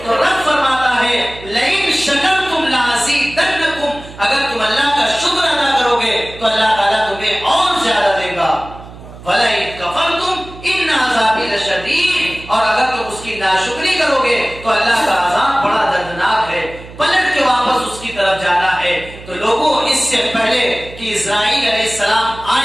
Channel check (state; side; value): noise; right; hum, 17 dB below the sound